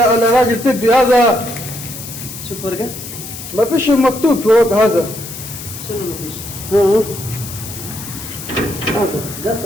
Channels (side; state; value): left; noise; hiss, 11 dB below the sound